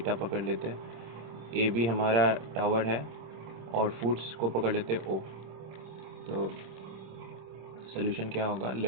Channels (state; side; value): late; left; 26 ms